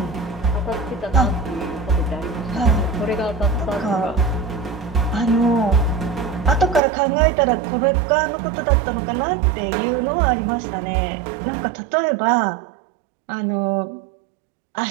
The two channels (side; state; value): left; drops out; at 6.8 s